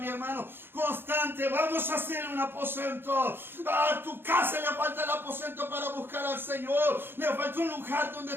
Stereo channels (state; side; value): late; left; 0.10 ms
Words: hermano, constante. Vamos a hacer un aposento. A tu casa le falta el aposento para buscar al Señor. Le falta un lugar donde